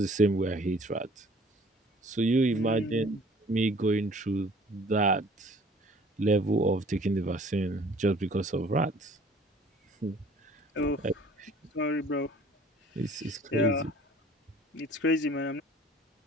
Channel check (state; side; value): normal; both; correlation 0.53